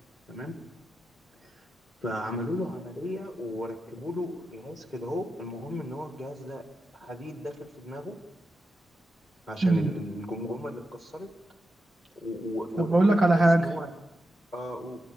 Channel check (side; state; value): both; normal; correlation 0.89